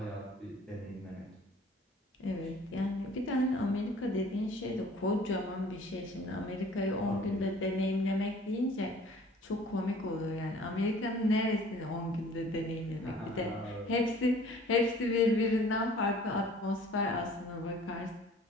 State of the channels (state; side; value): normal; both; correlation 0.51